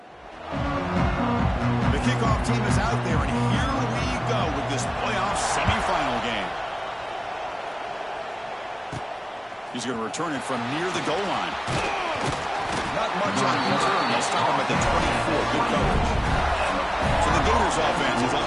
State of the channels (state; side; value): identical; both; correlation 1.00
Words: Kickoff team is out there, and here we go with this playoff semifinal game. He's going to return it from near the goal line. Not much on return. They'll stop him at the 24. Good coverage. So the Gators offense is up